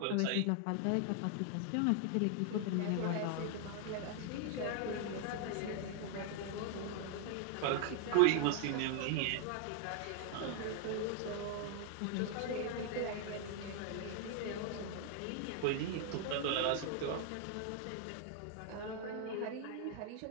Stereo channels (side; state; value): both; different; correlation 0.00